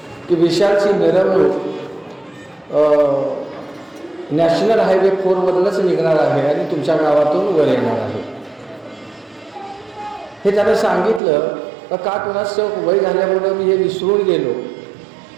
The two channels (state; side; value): drops out; left; at 11.2 s